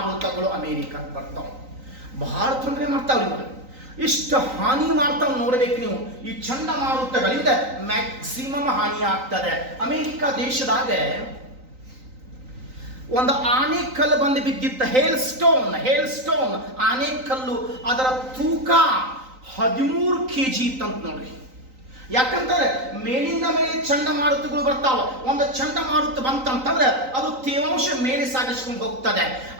ಅಮೆರಿಕಕ್ಕೆ ಬರ್ತಾವ. ಬಹಳ ತೊಂದರೆ ಮಾಡ್ತಾವ್ರಿ ಇವಾಗ. ಇಷ್ಟು ಹಾನಿ ಮಾಡ್ತಾವ್ ನೋಡ್ಬೇಕು ನೀವು. ಈ ಚಂಡಮಾರುತಗಳಿಂದ ಮ್ಯಾಕ್ಸಿಮಮ್ ಹಾನಿ ಆಗ್ತದೆ. ಅಮೆರಿಕ ದೇಶದಾಗ ಒಂದು ಆನೆಕಲ್ಲು ಬಂದು ಬಿದ್ದಿತ್ತ, ಹೇಲ್ ಸ್ಟೋನ್ ಆನೆಕಲ್ಲು. ಅದರ ತೂಕ 13 kg ಇತ್ತಂತ ನೋಡ್ರಿ. ಯಾಕಂತಂದ್ರೆ ಮೇಲಿಂದ ಮೇಲೆ ಚಂಡಮಾರುತಗಳು ಬರ್ತಾವ. ಒಂದು ಚಂಡಮಾರುತ ಬಂತಂತಂದ್ರೆ ಅದು ತೇವಾಂಶ ಮೇಲೆ ಸಾಗಿಸ್ಕೊಂಡು ಹೋಗ್ತದೆ.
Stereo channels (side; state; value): left; late; 3.9 ms